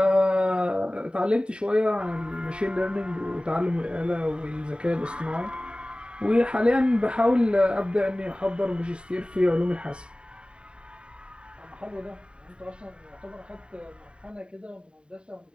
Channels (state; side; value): late; left; 0.052 ms